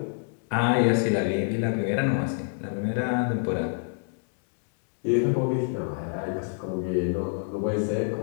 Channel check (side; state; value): right; silent; digital silence